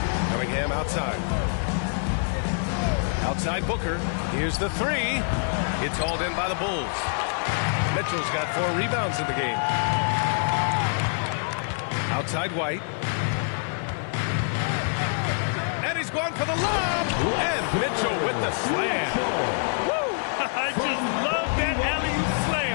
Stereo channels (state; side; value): silent; right; 61 dB below the other